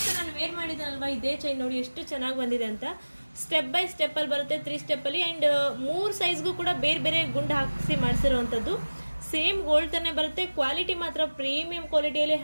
ಸೊ ನಾನು ವೇರ್ ಮಾಡಿದ್ದೀನಲ್ವಾ ಇದೇ ಚೈನ್ ನೋಡಿ ಎಷ್ಟು ಚೆನ್ನಾಗಿ ಬಂದಿದೆ ಅಂತ. ಸ್ಟೆಪ್ ಬೈ ಸ್ಟೆಪ್ ಅಲ್ಲಿ ಬರುತ್ತೆ, 3 ಸ್ಟೆಪ್ ಅಲ್ಲಿ ಅಂಡ್ 3 ಸೈಜ್ಗೂ ಕೂಡ ಬೇರೆ ಬೇರೆ ಗುಂಡು ಹಾಕಿಸಿ ಮಾಡಿಸಿರುವಂಥದ್ದು. ಸೇಮ್ ಗೋಲ್ಡ್ ತಾನೇ ಬರುತ್ತೆ, ಕ್ವಾಲಿಟಿ ಮಾತ್ರ ಪ್ರೀಮಿಯಂ ಕ್ವಾಲಿಟಿಯಲ್ಲಿ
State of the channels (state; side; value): inverted; both; correlation -1.00